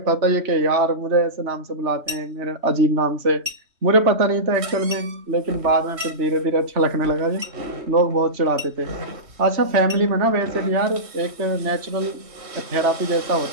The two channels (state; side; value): late; left; 3.1 ms